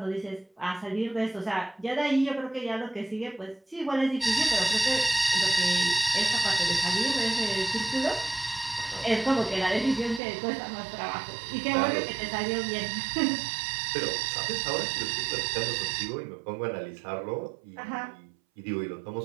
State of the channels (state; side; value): drops out; left; at 10.2 s